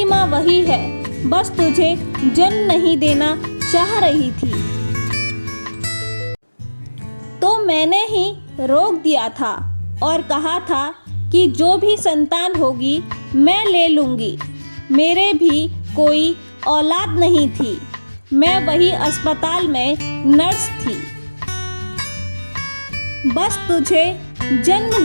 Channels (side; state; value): both; inverted; correlation -1.00